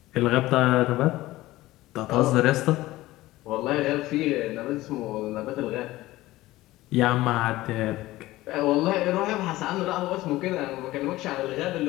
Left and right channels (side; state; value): right; quieter; 17.4 dB